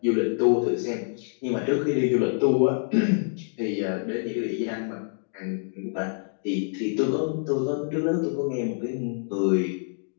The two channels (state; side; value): silent; right; digital silence